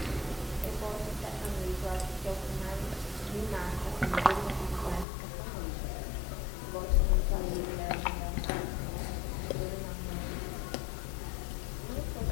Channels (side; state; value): right; drops out; at 5.1 s